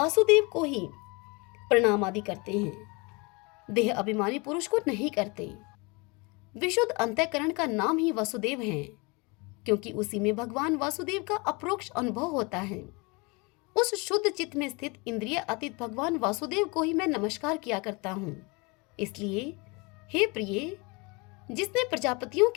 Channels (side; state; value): right; quieter; 28.3 dB